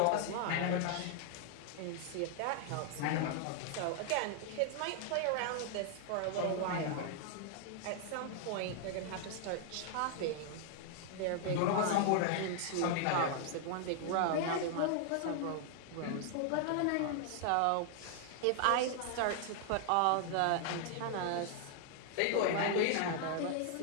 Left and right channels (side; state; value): both; different; correlation 0.00